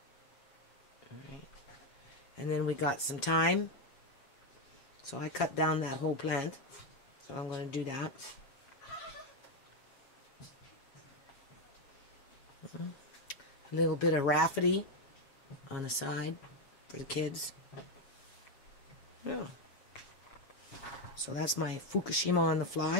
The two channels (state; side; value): late; right; 7.3 ms